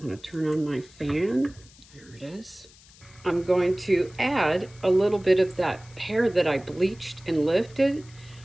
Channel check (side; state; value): left; noise; hiss, 24 dB below the sound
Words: going to turn on my fan. There it is. I'm going to add a little bit of that hair that I bleached and lifted.